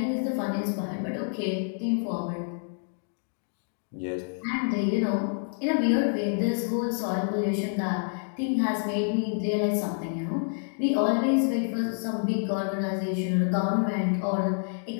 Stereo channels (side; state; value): right; silent; digital silence